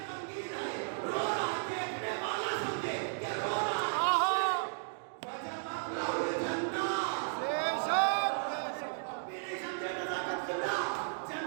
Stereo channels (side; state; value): left; silent; digital silence